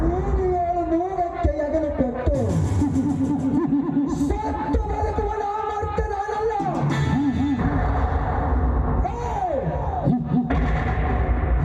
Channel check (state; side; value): identical; both; correlation 1.00